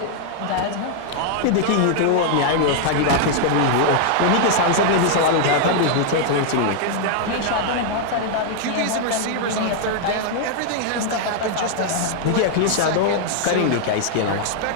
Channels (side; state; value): both; different; correlation 0.00